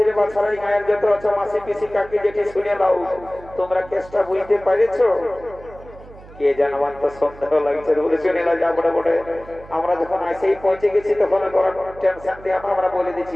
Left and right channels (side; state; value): right; noise; hum, 20 dB below the sound